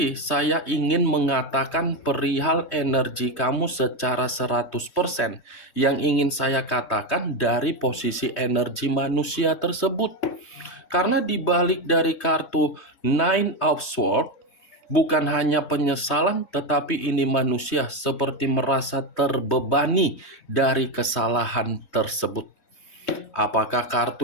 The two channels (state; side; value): late; right; 3.2 ms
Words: saya ingin mengatakan perihal energi kamu secara 100%. Yang ingin saya katakan dari posisi energi manusia tersebut. Karena dibalik dari kartu Nine of Swords, bukan hanya penyesalan, tetapi ini manusia seperti merasa terbebani dari kesalahan tersebut. Apakah